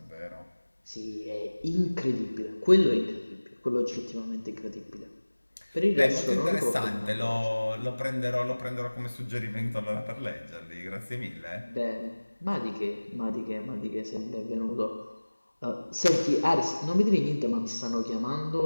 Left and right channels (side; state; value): both; inverted; correlation -1.00